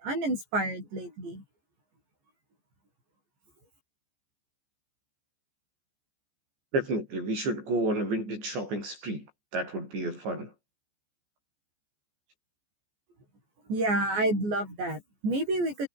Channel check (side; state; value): left; late; 14 ms